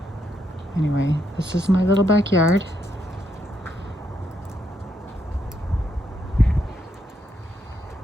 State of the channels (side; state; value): both; normal; correlation 0.77